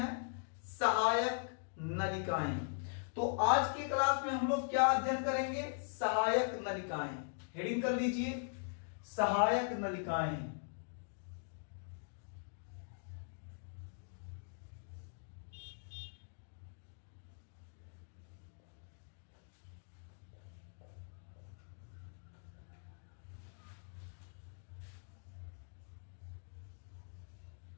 सहायक नलिकाएं। तो आज के क्लास में हम लोग क्या अध्ययन करेंगे? सहायक नलिकाएं। हेडिंग कर लीजिए, सहायक नलिकाएं।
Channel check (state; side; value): silent; right; digital silence